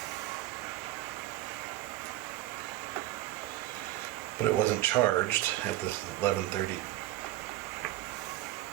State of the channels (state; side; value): quieter; left; 15.7 dB